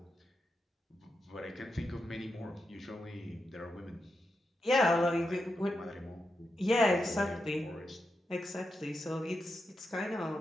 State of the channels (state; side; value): normal; both; correlation 0.87